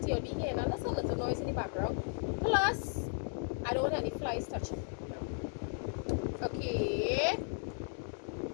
You'll be hearing a little noise in the background. Plus, I don't want any flies touching. Okay.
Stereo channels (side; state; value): right; silent; 54 dB below the other